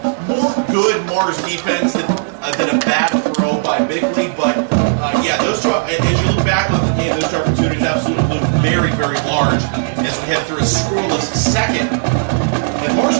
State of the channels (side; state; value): left; silent; digital silence